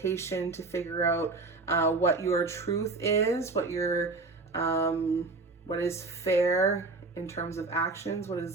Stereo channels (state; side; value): quieter; left; 3.6 dB